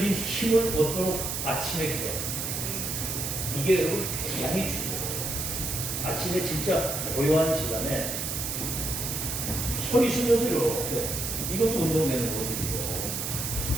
힘을 얻도록 아침에 기도합니다. 이게 여러분 굉장히 중요해요. 아침에 진짜 고요한 시간에 소리 쉬면서 이렇게 이것도 운동되는 거거든요.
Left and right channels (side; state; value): right; noise; hiss, 3 dB below the sound